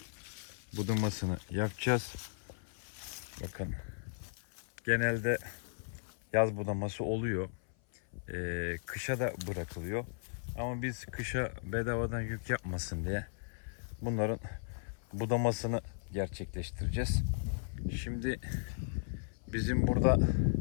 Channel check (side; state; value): right; silent; 54 dB below the other